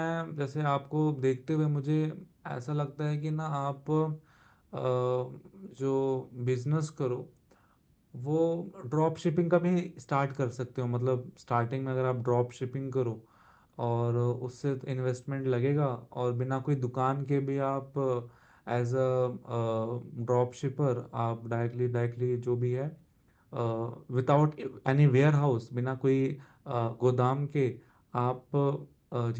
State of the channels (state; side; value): identical; both; correlation 1.00